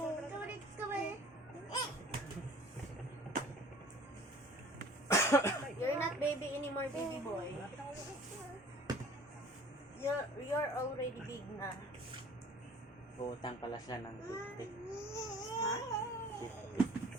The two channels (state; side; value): normal; both; correlation 0.48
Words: not baby anymore, baby boy. You're already big na. Utang pala siya ng 50. Ha?